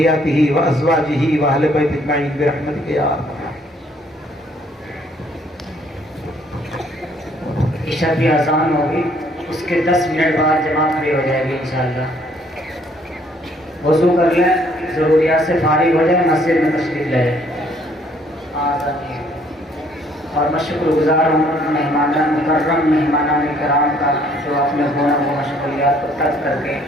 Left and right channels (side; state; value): both; normal; correlation 0.63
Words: وازواجہ واہل بیت اجمعین برحمتک یا ارحم. عشاء کی اذان ہوگی، اس کے 10 منٹ بعد جماعت کھڑی ہو جائے گی انشاءاللہ. وضو کر لیں، ضروریات سے فارغ ہو جائیں، مسجد میں تشریف لے جائیں. اور میں شکر گزار ہوں مکرم مہمانان کرام کا جو اپنے گناہ و مشغولیات کو ترک کر کے